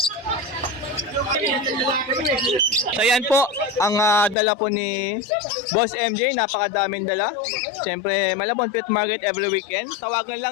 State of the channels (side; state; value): right; drops out; at 4.4 s